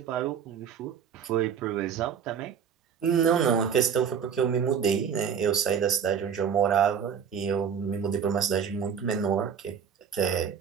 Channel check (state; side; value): quieter; left; 7.4 dB